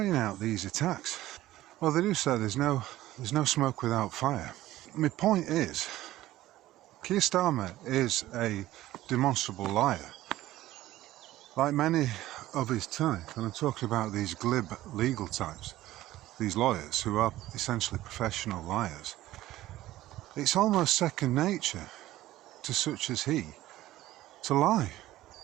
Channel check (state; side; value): quieter; left; 15.4 dB